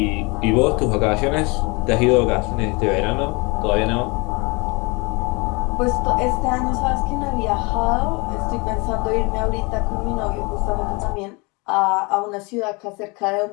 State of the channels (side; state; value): right; quieter; 27.8 dB